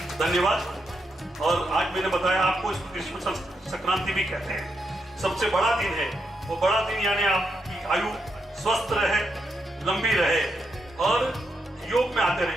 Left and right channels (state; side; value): normal; both; correlation 0.82